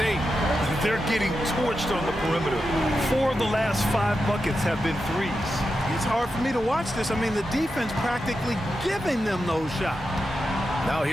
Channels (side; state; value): both; normal; correlation 0.89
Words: They're getting torched on the perimeter. 4 of the last 5 buckets have been 3s. It's hard for me to watch this. I mean, the defense practically giving them those shots. Now